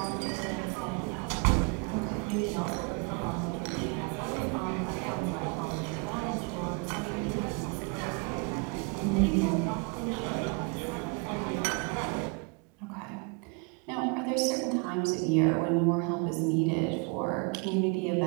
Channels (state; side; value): quieter; left; 33.1 dB